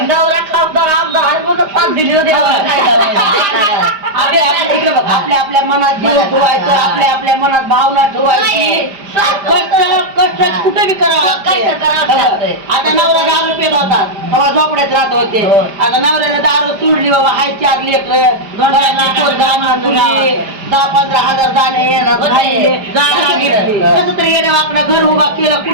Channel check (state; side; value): late; left; 5.0 ms